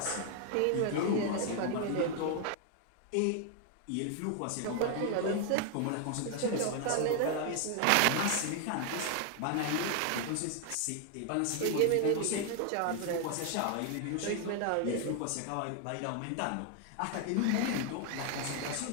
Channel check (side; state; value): both; different; correlation 0.00